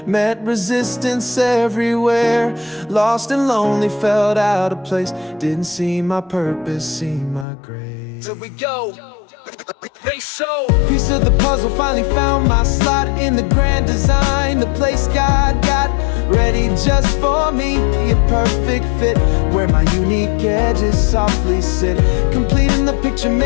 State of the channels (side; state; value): right; drops out; at 7.5 s